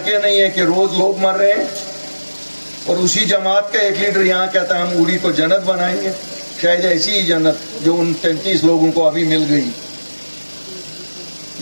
نہیں ہیں کہ روز لوگ مر رہے ہیں. اور اسی جماعت کا ایک لیڈر یہاں کہتا ہے ہم اوڑی کو جنت بنائیں گے, شاید ایسی ہی جنت جو ان 33 لوگوں کو ابھی مل گئی.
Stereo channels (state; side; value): inverted; both; correlation -1.00